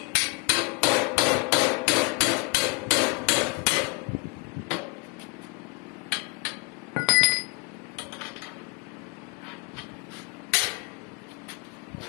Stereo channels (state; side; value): quieter; right; 29.5 dB